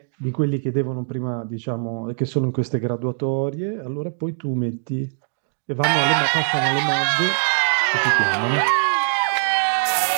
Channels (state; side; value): silent; left; digital silence